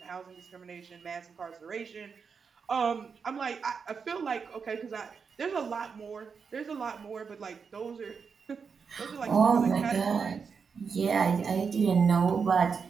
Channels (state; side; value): quieter; left; 5.8 dB